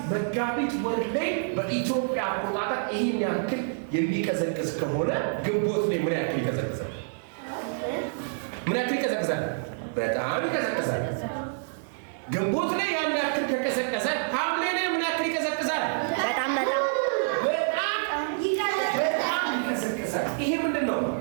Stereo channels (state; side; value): silent; left; 60 dB below the other